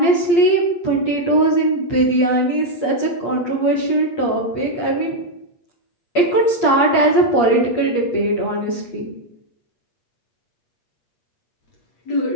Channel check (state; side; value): late; right; 8.5 ms